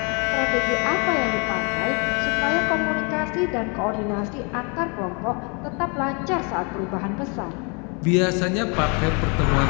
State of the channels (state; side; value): quieter; right; 33.6 dB